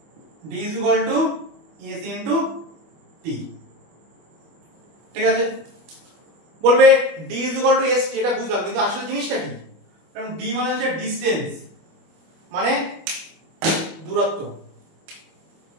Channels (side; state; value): left; late; 25 ms